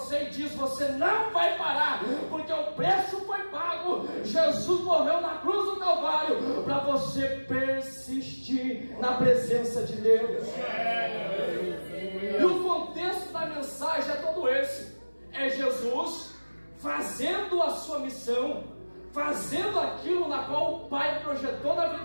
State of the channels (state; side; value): inverted; both; correlation -1.00